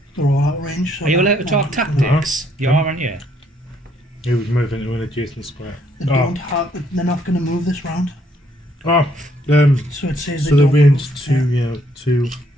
They're all out of range. So Are you allowed to talk tactics? You are, aren't you? He would move into an adjacent square. They don't have. They're not going to move this round. Oh, So it says so they the don't range move. 2, Yeah. 2.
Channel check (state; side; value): normal; both; correlation 0.69